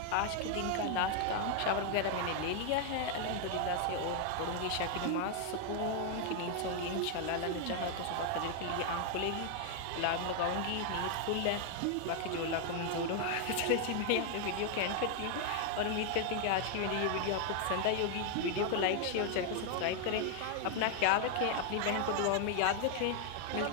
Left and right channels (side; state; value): both; different; correlation 0.00